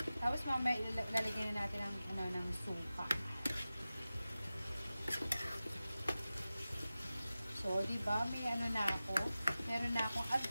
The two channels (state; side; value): inverted; both; correlation -0.95